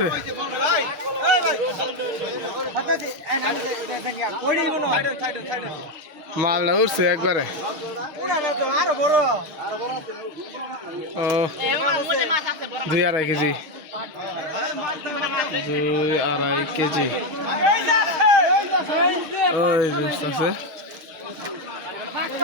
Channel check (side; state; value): left; late; 6.3 ms